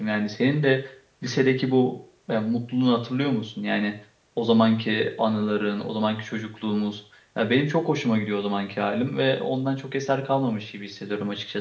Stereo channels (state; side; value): identical; both; correlation 1.00